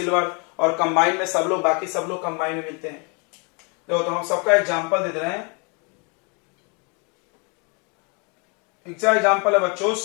और कंबाइन में सब लोग, बाकी सब लोग कंबाइन में मिलते हैं। तो हम सबका एग्जाम्पल दे रहे हैं। एग्जाम्पल है बच्चों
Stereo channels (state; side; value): quieter; right; 33.7 dB